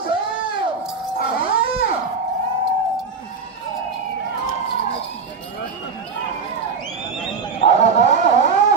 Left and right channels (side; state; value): left; quieter; 5.0 dB